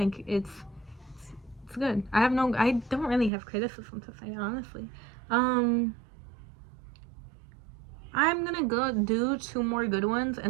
it's good. I don't really have criticism to say, honestly. I'm gonna go do 2 more good ones,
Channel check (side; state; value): left; drops out; at 3.3 s